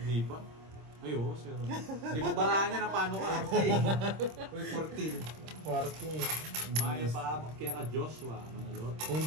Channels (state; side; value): late; left; 26 ms